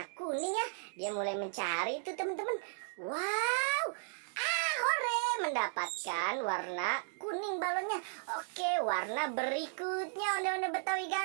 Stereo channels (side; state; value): left; silent; digital silence